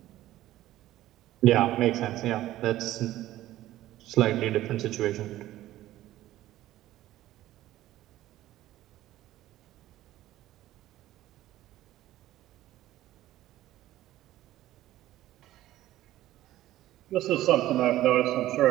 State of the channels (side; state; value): left; quieter; 14.7 dB